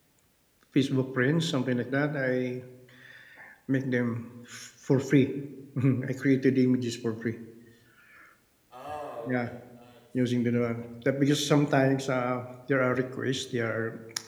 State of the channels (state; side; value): identical; both; correlation 1.00